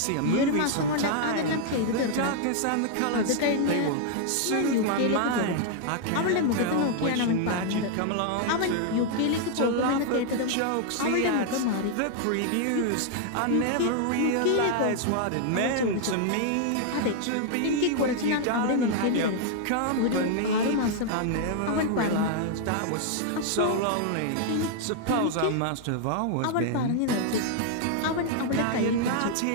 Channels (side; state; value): both; different; correlation 0.00